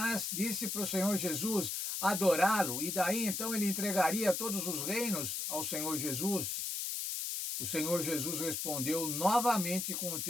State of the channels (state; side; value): noise; left; hiss, 2 dB below the sound